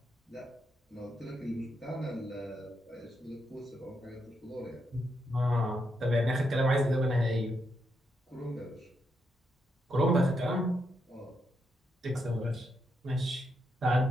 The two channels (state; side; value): normal; both; correlation 0.81